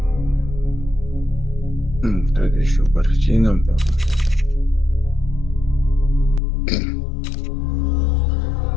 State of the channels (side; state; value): right; drops out; at 6.4 s